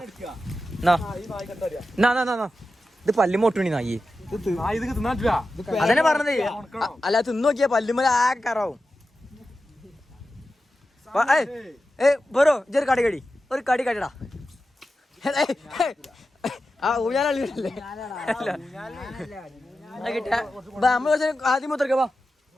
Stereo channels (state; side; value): normal; both; correlation 0.92